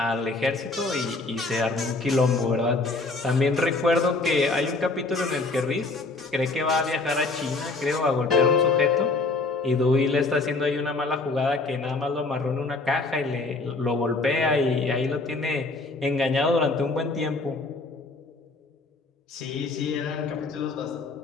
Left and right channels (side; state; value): right; quieter; 3.5 dB